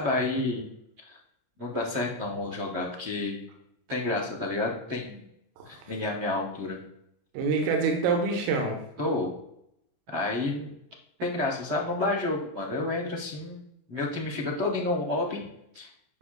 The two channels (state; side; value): late; left; 17 ms